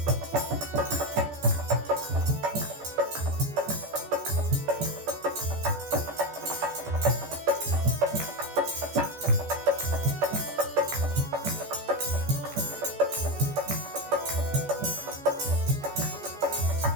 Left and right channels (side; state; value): left; late; 14 ms